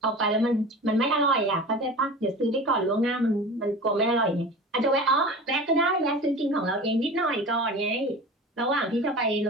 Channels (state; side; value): normal; both; correlation 0.35